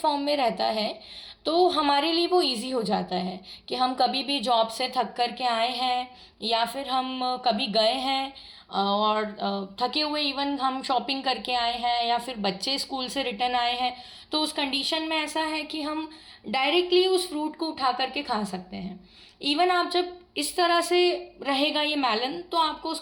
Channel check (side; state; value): both; identical; correlation 1.00